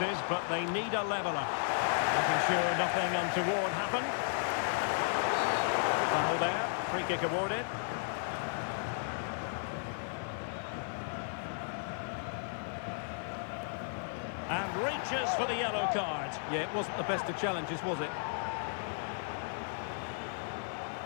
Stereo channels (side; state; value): right; silent; digital silence